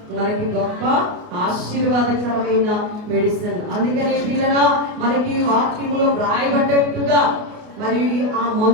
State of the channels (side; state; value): left; late; 29 ms